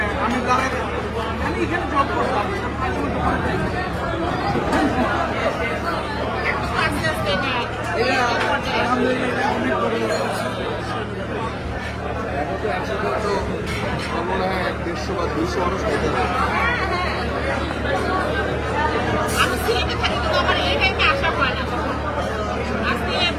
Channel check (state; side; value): identical; both; correlation 1.00